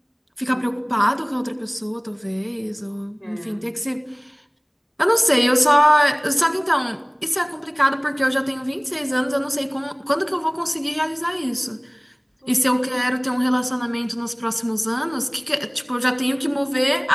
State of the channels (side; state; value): both; identical; correlation 1.00